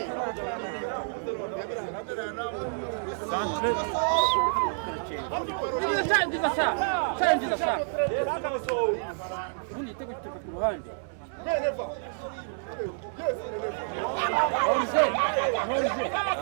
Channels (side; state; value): left; silent; digital silence